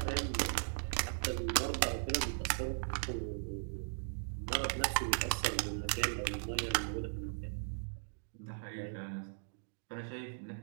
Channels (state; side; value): silent; left; digital silence